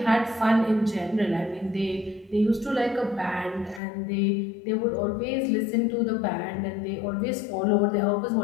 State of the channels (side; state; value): right; drops out; at 3.8 s